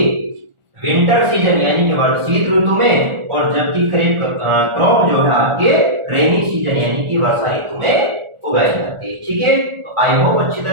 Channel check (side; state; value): left; late; 1.4 ms